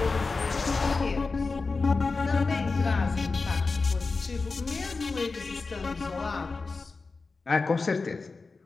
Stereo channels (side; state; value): right; quieter; 4.1 dB